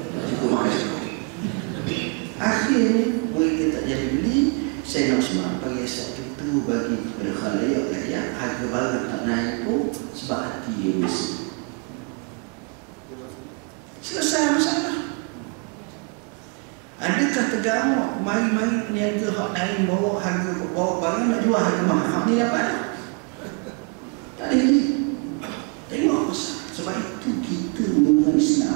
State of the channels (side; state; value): left; quieter; 33.8 dB